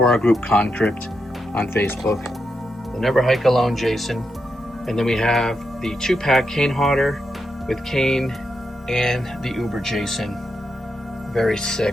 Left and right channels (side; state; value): both; normal; correlation 0.84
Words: our group Concrypt on Facebook. The Never Hike Alone Jason. And then we have the 2-pack Kane Hodder with Kane and the Uber Jason. Very